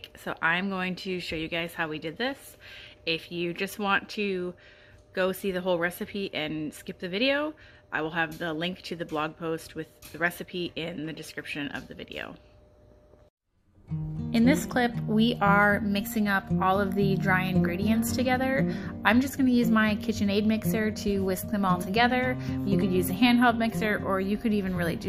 so I'm going to show you guys how we did this. If you just want to go see the whole recipe and skip the video, I will have the link to the blog post with the recipe in the description of the video. In this clip, we are mixing up all of the dry ingredients together. I'm just going to use my KitchenAid mixer to whisk them all together. You could use a handheld mixer, or you could even really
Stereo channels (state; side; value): identical; both; correlation 1.00